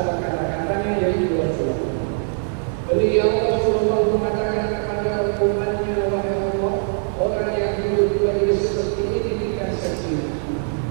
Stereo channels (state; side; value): silent; left; digital silence